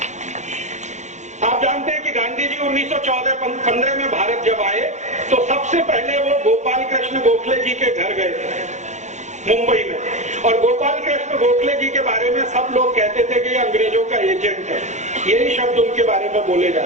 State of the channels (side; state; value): left; late; 0.34 ms